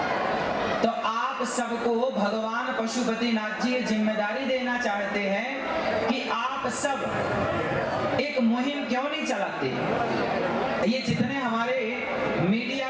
तो आप सबको भगवान पशुपतिनाथ जी जिम्मेदारी देना चाहते हैं कि आप सब एक मुहिम क्यों नहीं चलाते? ये जितने हमारे मीडिया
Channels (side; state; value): both; identical; correlation 1.00